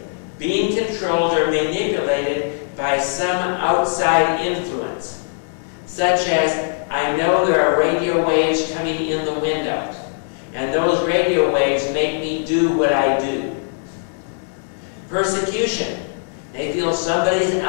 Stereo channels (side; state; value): right; silent; 66 dB below the other